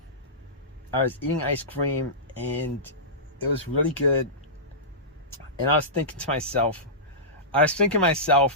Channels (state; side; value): normal; both; correlation -0.18